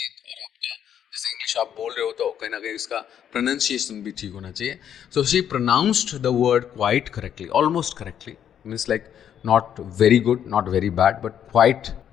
और आपका जैसे इंग्लिश आप बोल रहे हो तो कहीं ना कहीं इसका प्रोनाउंसिएशन भी ठीक होना चाहिए। So she pronounced the word quite correctly, almost correctly, means like not very good, not very bad, but quite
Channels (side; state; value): right; quieter; 9.4 dB